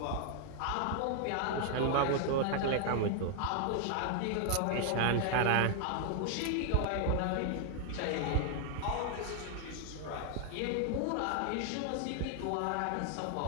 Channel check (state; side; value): different; both; correlation 0.00